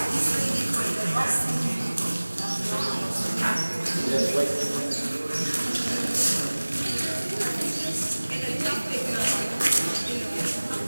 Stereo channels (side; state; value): both; inverted; correlation -1.00